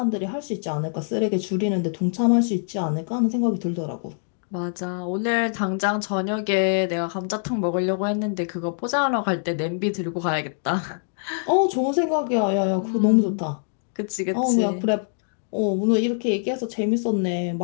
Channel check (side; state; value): right; silent; digital silence